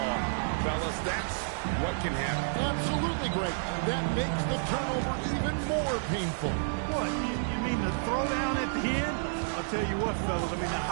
fellas, that's what can happen. Absolutely great. That makes the turnover even more painful. What, you mean the throwdown at the end? I'll tell you what, fellas, I mean, the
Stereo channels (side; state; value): left; silent; digital silence